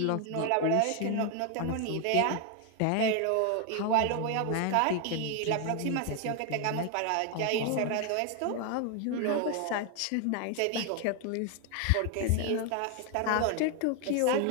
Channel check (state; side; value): different; both; correlation 0.01